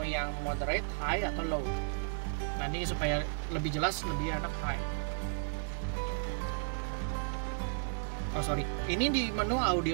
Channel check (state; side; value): silent; left; 55 dB below the other